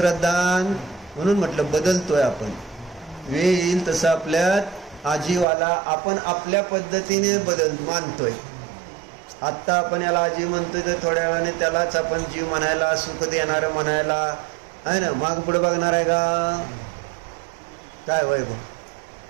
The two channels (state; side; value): drops out; left; at 5.5 s